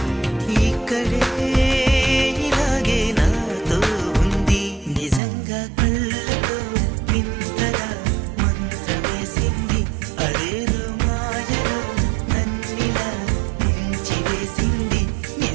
ఇక్కడే ఇలాగే నాతో ఉంది. నిజంగా కళ్ళతో వింతగా మంత్రమేసింది, అదేదో మాయలో నన్నిలా ముంచివేసింది.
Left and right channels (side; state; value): left; drops out; at 5.2 s